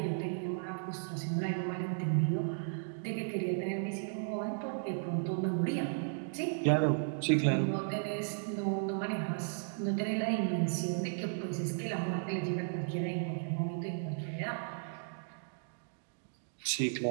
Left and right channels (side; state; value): left; silent; digital silence